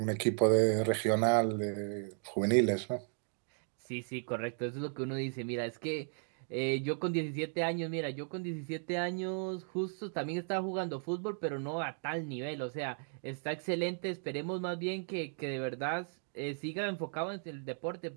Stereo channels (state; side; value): silent; left; 54 dB below the other